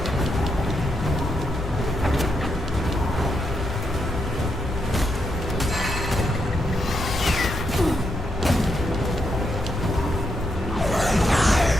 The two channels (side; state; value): both; normal; correlation 0.81